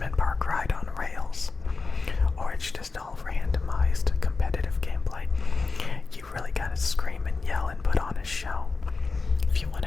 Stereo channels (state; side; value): quieter; right; 4.2 dB